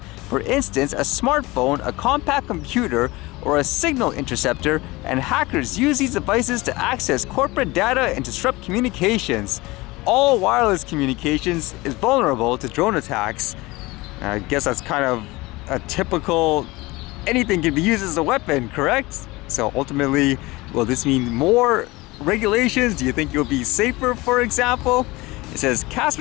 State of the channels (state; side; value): quieter; right; 21.7 dB